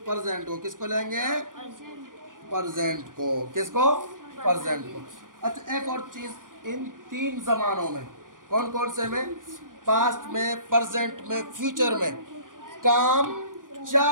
को। किसको लेंगे? प्रेजेंट को। किसको? प्रेजेंट को। अच्छा, एक और चीज़, इन 3 जमानों में, कौन कौन से में? पास्ट में, प्रेजेंट में, फ्यूचर में काम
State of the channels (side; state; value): left; late; 0.89 ms